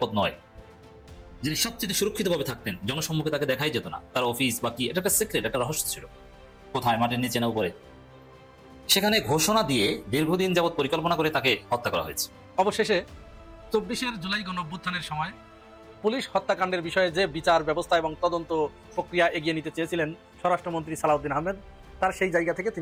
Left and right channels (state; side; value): identical; both; correlation 1.00